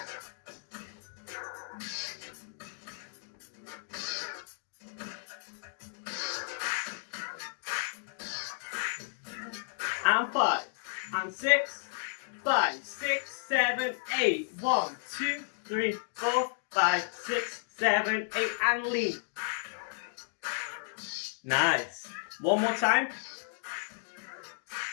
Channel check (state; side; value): silent; right; digital silence